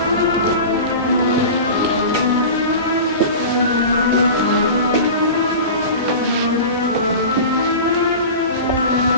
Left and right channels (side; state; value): both; inverted; correlation -0.32